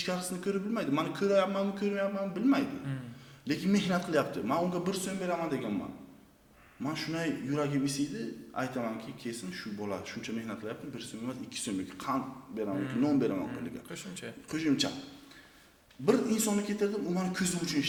ko'rib bilmaydi. Meni ko'ryapmanmi, ko'rmayapmanmi bilmaydi. Lekin mehnat qilyapti. Men unga 1 so'm beraman deganman. Men shunday yuragim isiydi, aytamanki, kesin shu bola shuncha mehnat qilyapti, 1 so'm emas, 2 so'm yoki qand beraman yoki non beraman qo'liga. Qo'shimcha. Bir insonni ketirdim, u meni ko'zim uchun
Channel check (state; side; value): identical; both; correlation 1.00